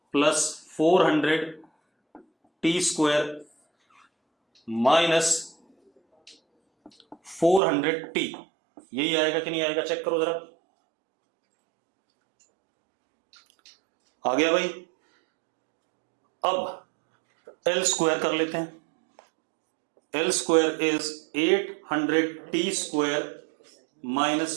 प्लस 400t स्क्वायर माइनस 400t। यही आएगा कि नहीं आएगा? चेक करो जरा। आ गया भाई? अब L स्क्वायर कर लेते हैं। L square is 800t square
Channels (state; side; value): drops out; left; at 7.6 s